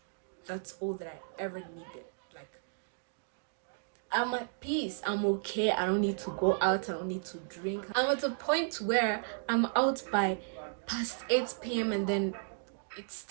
That's all that I ever needed. Like, I'm at peace. I'm okay. I don't need to go out. I don't need to drink. I'm at a point where I'm out by past 8 p.m. and then it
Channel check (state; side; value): silent; left; digital silence